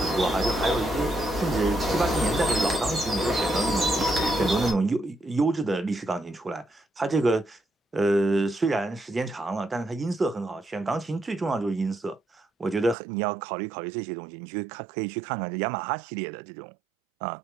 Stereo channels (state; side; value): drops out; left; at 13.0 s